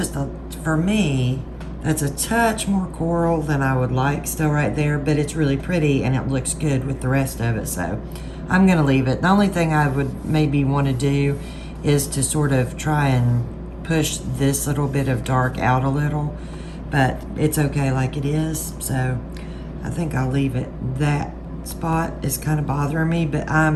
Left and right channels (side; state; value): both; identical; correlation 1.00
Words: for me, that's a touch more coral than I would like still right there, but it's really pretty and it looks good with the rest of it. So I'm gonna leave it. The only thing I would maybe want to do is to sort of try and push this little bit of dark out a little, but it's okay like it is. So I think I'll leave it. That spot is kind of bothering me, but